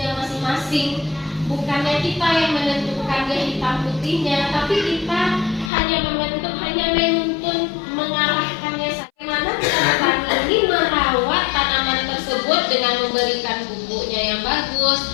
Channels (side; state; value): right; drops out; at 5.7 s